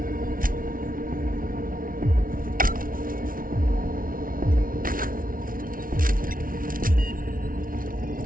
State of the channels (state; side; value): late; left; 0.41 ms